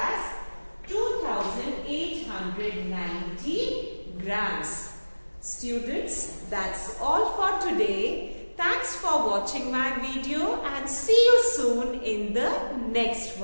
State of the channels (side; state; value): both; inverted; correlation -1.00